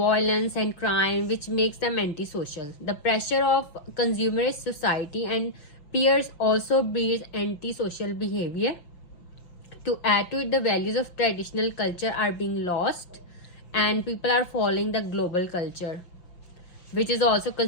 and crime which makes them antisocial. The pressure of consumerist society and peers also breeds antisocial behavior. To add to it, the values of traditional culture are being lost and people are following the global culture, which is also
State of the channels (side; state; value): right; late; 5.9 ms